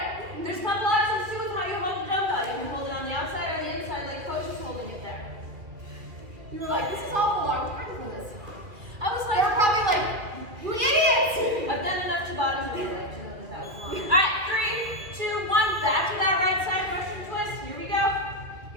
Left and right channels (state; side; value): late; left; 2.6 ms